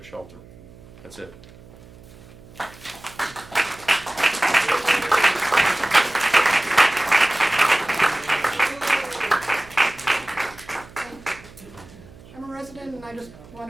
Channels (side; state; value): right; noise; hum, 21 dB below the sound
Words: shelter. That's it. I'm a resident and I just